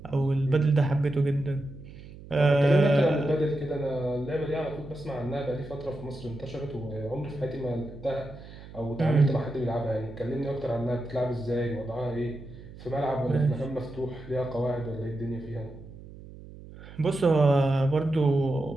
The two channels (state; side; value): noise; right; hum, 16 dB below the sound